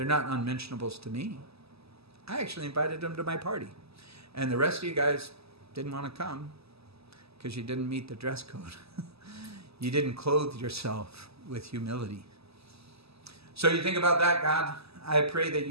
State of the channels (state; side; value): late; left; 0.78 ms